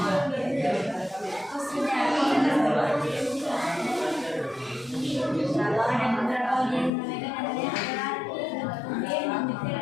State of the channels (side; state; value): right; drops out; at 6.9 s